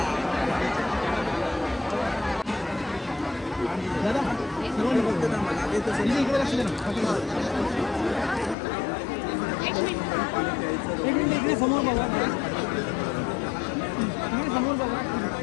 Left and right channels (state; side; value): drops out; right; at 8.6 s